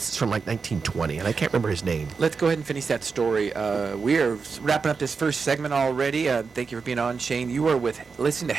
from like 1920, and I can't remember his name. Let's go ahead and finish that story. We are wrapping up this first segment already. Thank you for being on, Shane. You are listening to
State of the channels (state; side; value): quieter; left; 5.1 dB